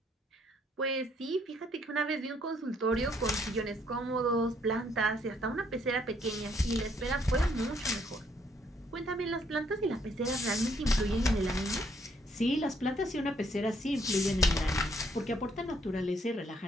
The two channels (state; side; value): normal; both; correlation 0.68